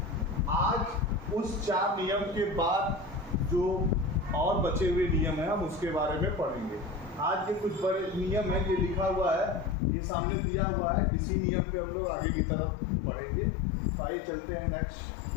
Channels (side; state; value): right; drops out; at 9.8 s